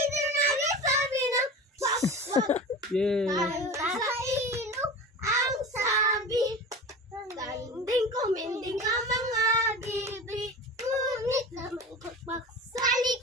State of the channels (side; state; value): both; normal; correlation 0.32